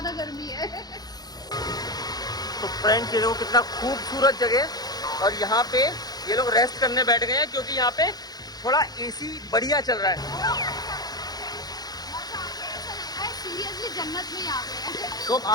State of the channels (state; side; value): late; right; 0.19 ms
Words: गर्मी है। तो फ्रेंड्स ये देखो कितना खूबसूरत जगह, और यहाँ पे ये लोग रेस्ट करने बैठ गए हैं क्योंकि यहाँ पे थोड़ा एसी बढ़िया चल रहा है। सीरियसली जन्नत में आ गए हैं। तो अब